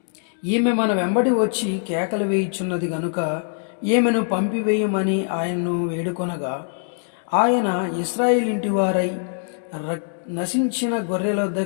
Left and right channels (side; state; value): right; silent; digital silence